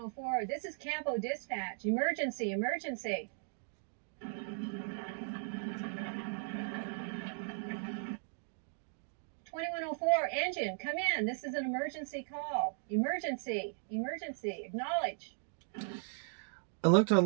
this is Campo Dispatch. Emergency, emergency. 2104, engine, come in. This is an emergency call. Emergency, emergency, acknowledge. I looked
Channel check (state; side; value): silent; left; digital silence